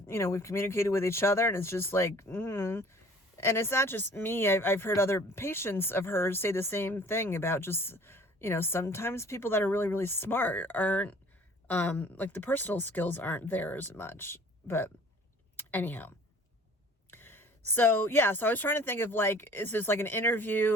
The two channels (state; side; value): normal; both; correlation 0.51